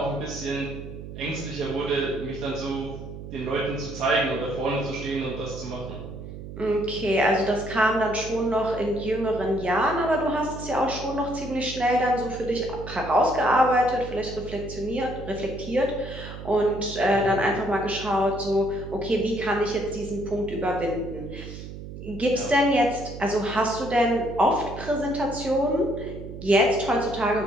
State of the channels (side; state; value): right; noise; hum, 11 dB below the sound